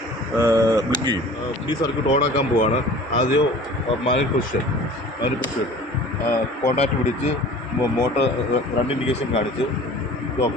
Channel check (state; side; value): normal; both; correlation 0.44